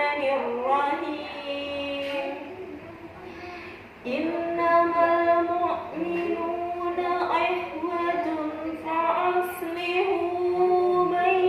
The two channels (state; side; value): identical; both; correlation 1.00